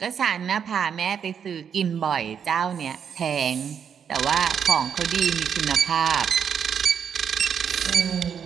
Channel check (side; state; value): left; quieter; 7.7 dB